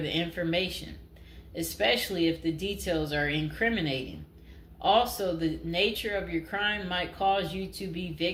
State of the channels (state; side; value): identical; both; correlation 1.00